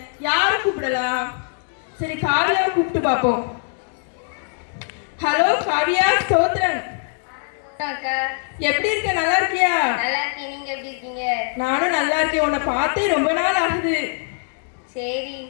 யார கூப்பிடலாம்? சரி, காவியாவை கூப்பிட்டு பார்ப்போம். ஹலோ காவியா, ஸ்தோத்திரம். எப்படி இருக்க? நல்லா இருக்கியா? நீங்க எப்படி இருக்கீங்க? நானும் நல்லா இருக்கேன். உன்னை பார்த்தே ரொம்ப நாள் ஆகுது. சரி.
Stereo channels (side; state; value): right; silent; 63 dB below the other